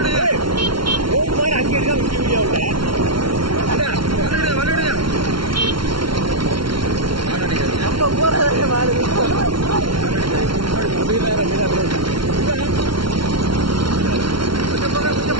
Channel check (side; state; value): left; late; 0.74 ms